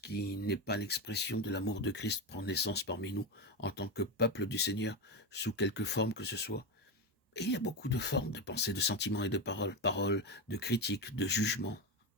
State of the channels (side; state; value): both; normal; correlation 0.14